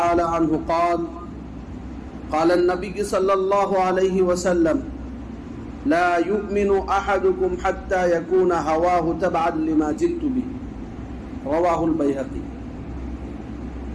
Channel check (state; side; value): identical; both; correlation 1.00